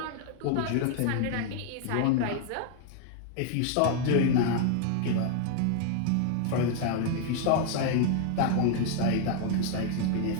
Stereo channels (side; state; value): both; different; correlation 0.00